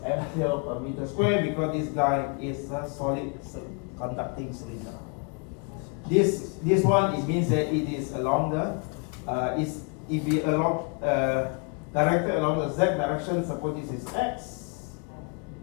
ampere per meter square because this guy is a solid conducting cylinder. This one it means that it is along the if it along directed along the z direction. Suppose this is x,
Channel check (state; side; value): quieter; right; 36.3 dB